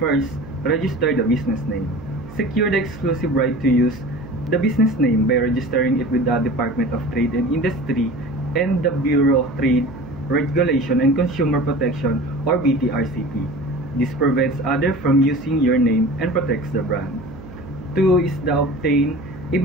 register the business name. Secure the exclusive right to use the business name by registering it with the Department of Trade and Industry and the Bureau of Trade, Regulation and Consumer Protection or BTRCP. This prevents others from using your name and protects the brand. 2 is the obtain a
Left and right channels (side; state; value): right; noise; hum, 16 dB below the sound